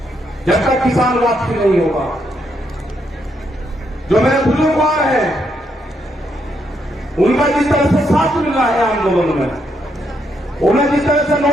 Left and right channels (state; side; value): normal; both; correlation 0.77